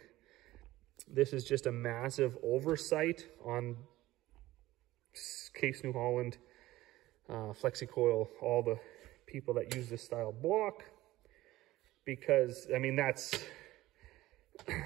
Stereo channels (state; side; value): quieter; left; 16.7 dB